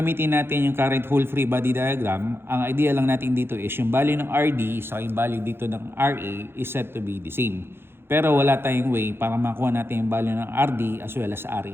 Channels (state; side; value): late; left; 0.11 ms